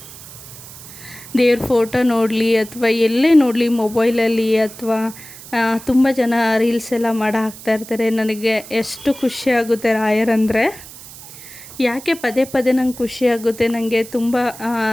ದೇವ್ರ ಫೋಟೋ ನೋಡಲಿ ಅಥವಾ ಎಲ್ಲೇ ನೋಡಲಿ, ಮೊಬೈಲಲ್ಲಿ ಅಥವಾ ತುಂಬ ಜನ ರೀಲ್ಸ್ ಎಲ್ಲ ಮಾಡಿ ಹಾಕ್ತಾಯಿರ್ತಾರೆ. ನನಗೆ ಎಷ್ಟು ಖುಷಿಯಾಗುತ್ತೆ ರಾಯರಂದರೆ. ಯಾಕೆ ಪದೇ ಪದೇ ನಂಗೆ ಖುಷಿಯಾಗುತ್ತೆ. ನನಗೆ ತುಂಬ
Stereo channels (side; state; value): right; noise; hiss, 16 dB below the sound